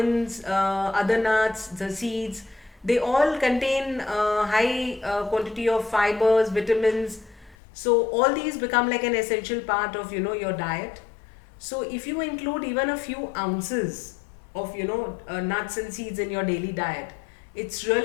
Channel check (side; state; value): right; drops out; at 7.6 s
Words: other nuts, the seeds, they all contain high quantity of fibers, vitamins. So all these become like an essential part of your diet. So if you include even a few ounces of nuts and seeds in your daily diet, it's